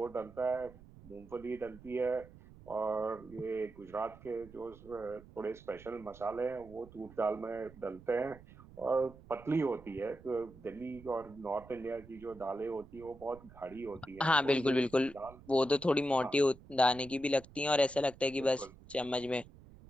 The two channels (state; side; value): noise; right; rumble, 20 dB below the sound